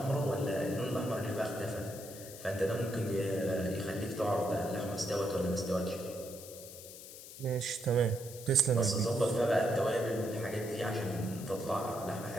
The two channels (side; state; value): left; noise; hiss, 14 dB below the sound